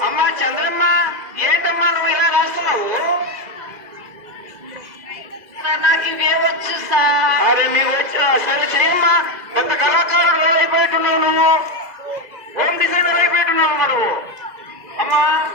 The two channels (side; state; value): left; late; 2.0 ms